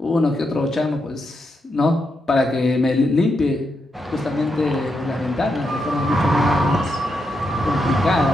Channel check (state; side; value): normal; both; correlation 0.83